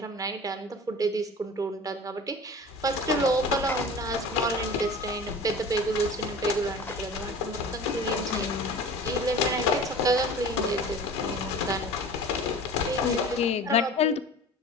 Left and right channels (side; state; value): both; normal; correlation 0.39